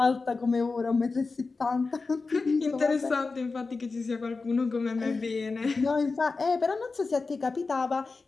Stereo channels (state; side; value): quieter; right; 4.1 dB